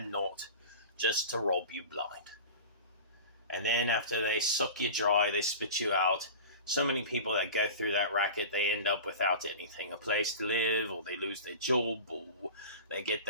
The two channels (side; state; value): both; inverted; correlation -0.34